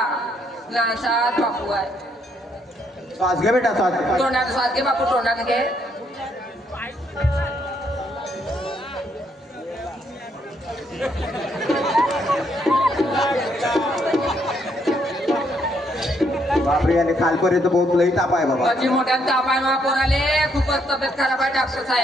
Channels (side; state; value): both; normal; correlation 0.72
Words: लहानसा बापू आहे. श्वास घे बेटा श्वास. तोंडाने स्वाद घे बापू. तोंडाने घे. बापरे याले खालपर्यंत बहुत लई ताप आहे बाबा. माझी मोठ्या ताप आहे मा पोराले. खूपच तब्येत खराब आहे डॉक्टर